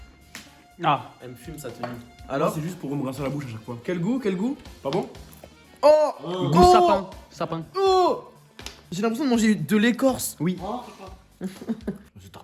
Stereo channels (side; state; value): both; identical; correlation 1.00